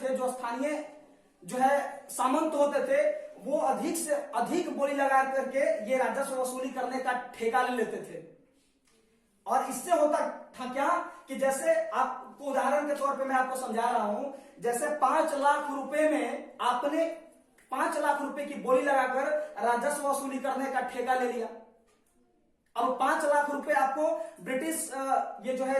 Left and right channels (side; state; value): both; identical; correlation 1.00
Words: जो स्थानीय जो है सामंत होते थे, वो अधिक से अधिक बोली लगा करके ये राजस्व वसूली करने का ठेका ले लेते थे। और इससे होता था क्या कि जैसे आपको उदाहरण के तौर पे मैं आपको समझा रहा हूं, जैसे 5 लाख रुपए में आपने 5 लाख रुपए की बोली लगाकर राजस्व वसूली करने का ठेका ले लिया। अब 5 लाख रुपए आपको ब्रिटिश ये जो है